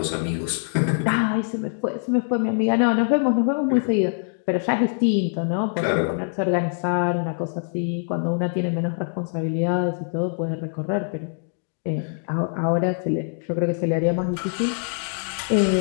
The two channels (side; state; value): right; silent; digital silence